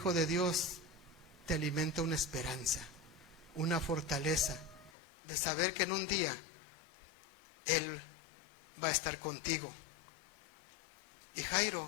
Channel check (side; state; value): right; drops out; at 4.9 s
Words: de Dios te alimenta una esperanza, una fortaleza de saber que en un día Él va a estar contigo. Y